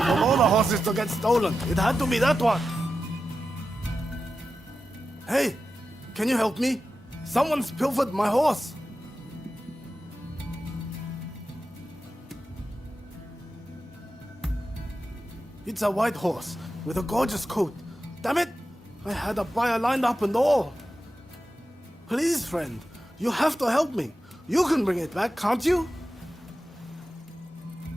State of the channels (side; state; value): both; normal; correlation 0.91